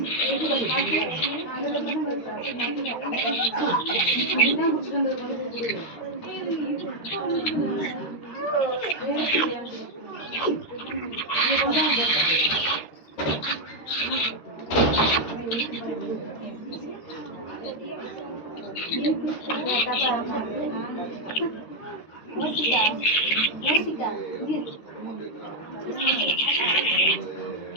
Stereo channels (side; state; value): right; late; 13 ms